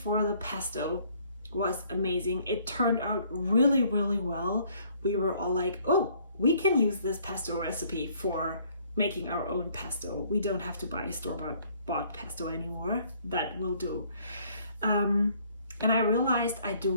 the pesto was amazing. It turned out really, really well. We were all like, oh, we can use this pesto recipe for making our own pesto. We don't have to buy a store-bought pesto anymore. That will do. And I realized I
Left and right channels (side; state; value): both; inverted; correlation -0.62